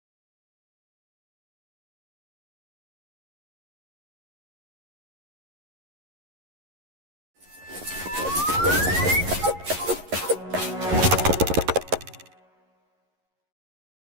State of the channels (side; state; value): left; late; 11 ms